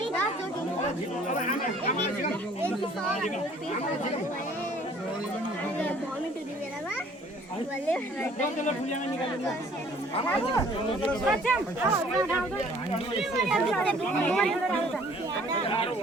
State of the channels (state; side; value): normal; both; correlation 0.56